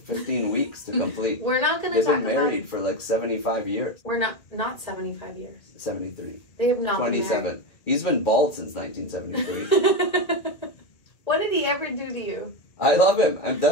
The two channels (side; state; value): right; late; 1.9 ms